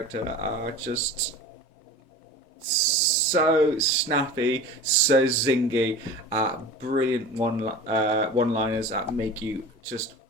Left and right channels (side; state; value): both; normal; correlation 0.36